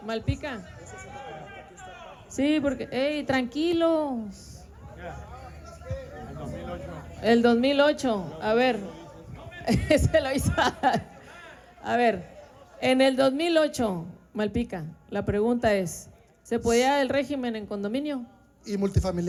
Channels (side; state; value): both; identical; correlation 1.00